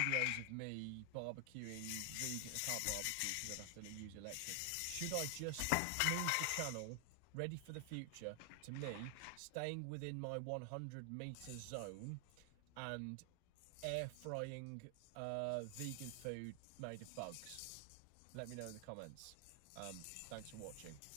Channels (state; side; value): different; both; correlation 0.00